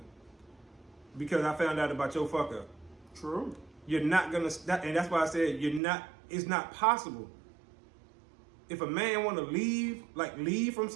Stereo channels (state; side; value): drops out; left; at 5.8 s